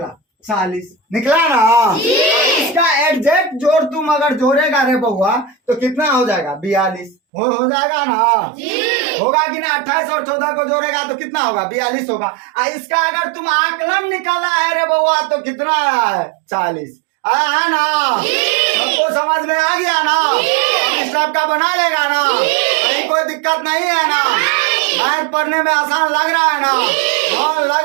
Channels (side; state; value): left; drops out; at 7.2 s